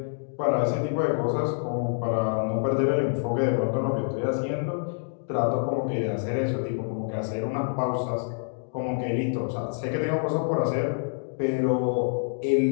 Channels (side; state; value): right; silent; digital silence